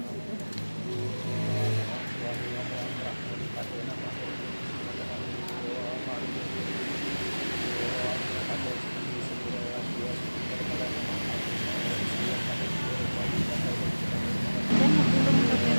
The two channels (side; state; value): both; inverted; correlation -1.00